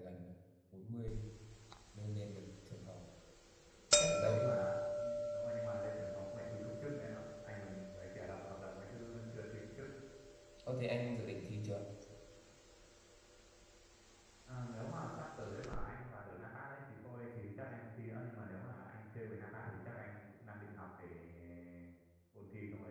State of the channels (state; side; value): identical; both; correlation 1.00